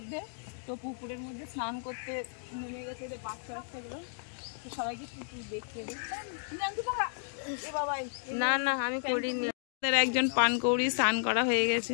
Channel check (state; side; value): silent; right; digital silence